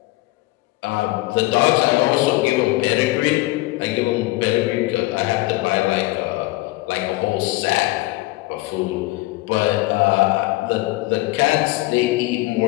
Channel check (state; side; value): quieter; right; 20.2 dB